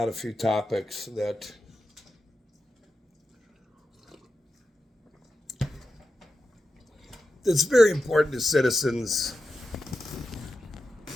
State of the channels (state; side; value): normal; both; correlation 0.90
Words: a few topics that's very important to citizens,